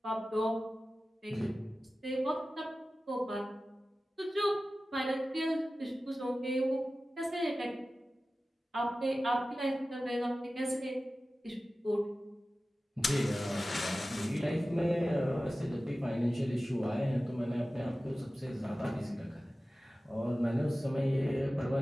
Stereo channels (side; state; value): both; normal; correlation 0.95